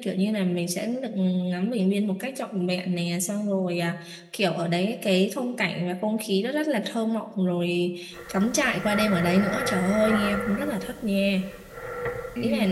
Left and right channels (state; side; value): identical; both; correlation 1.00